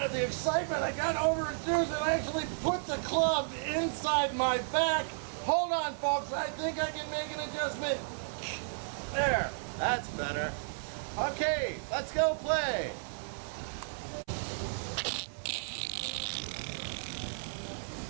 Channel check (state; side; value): silent; left; 56 dB below the other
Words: of the excitement, I got over-enthused and actually put the club inside my back. Hold on, folks. I think I can make an adjustment. There. That's better. Okay, let's go play.